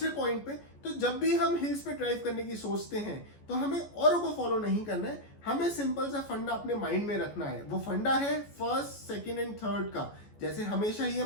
पॉइंट पे। तो जब भी हम हिल्स पे ड्राइव करने की सोचते हैं तो हमें औरों को फॉलो नहीं करना है, हमें सिंपल सा फंडा अपने माइंड में रखना है। वो फंडा है फर्स्ट, सेकंड एंड थर्ड का। जैसे हमेशा ही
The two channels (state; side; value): late; right; 14 ms